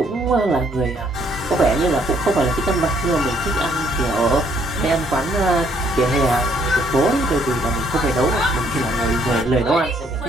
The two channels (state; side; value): normal; both; correlation 0.67